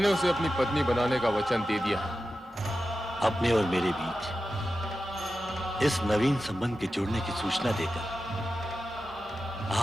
उसे अपनी पत्नी बनाने का वचन दे दिया है। अपने और मेरे बीच इस नवीन संबंध के जुड़ने की सूचना देकर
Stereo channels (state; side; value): normal; both; correlation 0.92